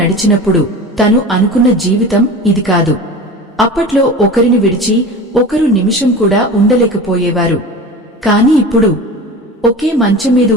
తను అనుకున్న జీవితం ఇది కాదు. అప్పట్లో ఒకరిని విడిచి ఒకరు నిమిషం కూడా ఉండలేకపోయేవారు. కాని ఇప్పుడు ఒకే మంచం మీద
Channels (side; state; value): both; normal; correlation 0.34